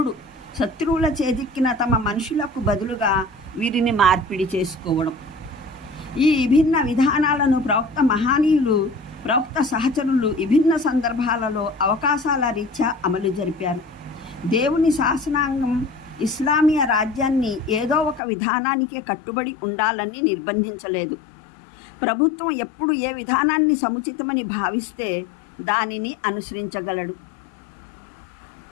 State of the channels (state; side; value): drops out; right; at 18.2 s